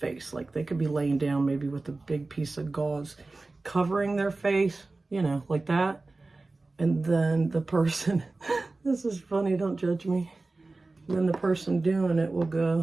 Like they could be laying down maybe with a big piece of gauze covering their face, you know, like that. And then the person, this is funny, don't judge me. Then the person doing it will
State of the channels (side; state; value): left; quieter; 3.3 dB